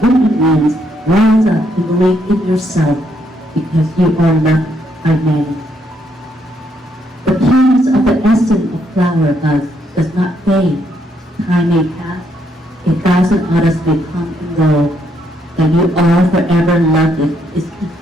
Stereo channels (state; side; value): normal; both; correlation 0.74